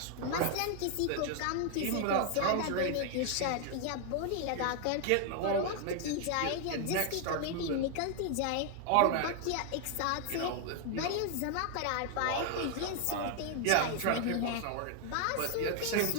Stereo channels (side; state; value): both; different; correlation 0.00